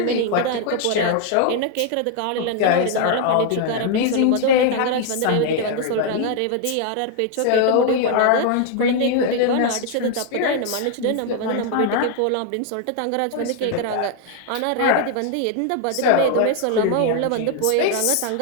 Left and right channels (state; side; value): different; both; correlation 0.00